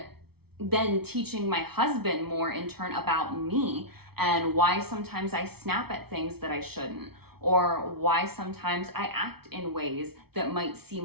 then teaching my husband more in turn about me and why sometimes I snap at things that I shouldn't, or why sometimes I act in ways that might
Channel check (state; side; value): late; left; 0.96 ms